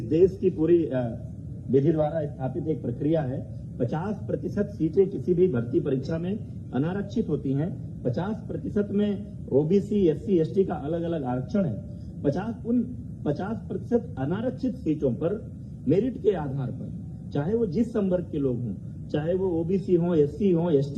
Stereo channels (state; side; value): identical; both; correlation 1.00